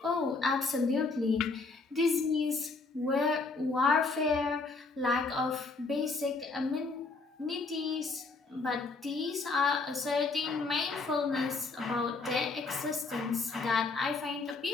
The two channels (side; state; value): right; quieter; 3.9 dB